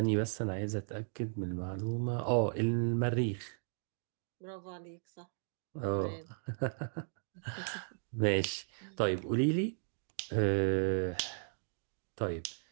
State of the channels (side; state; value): left; silent; digital silence